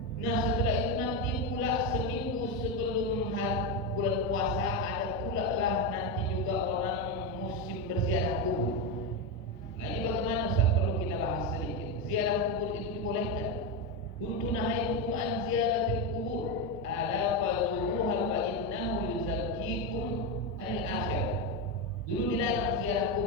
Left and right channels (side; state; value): both; normal; correlation 0.11